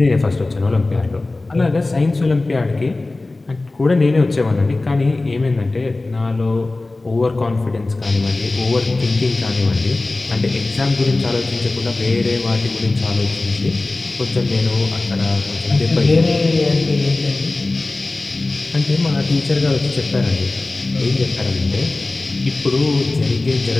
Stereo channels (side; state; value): right; quieter; 3.1 dB